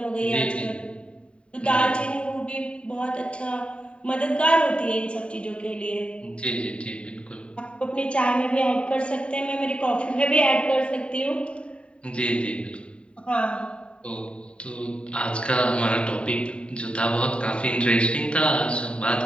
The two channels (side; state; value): right; late; 0.057 ms